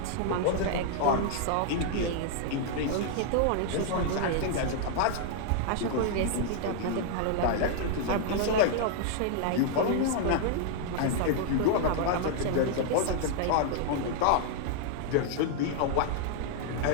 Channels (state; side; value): different; both; correlation -0.01